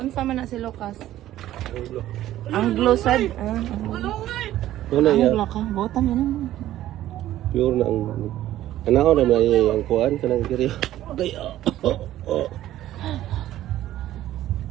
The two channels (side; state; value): left; quieter; 13.6 dB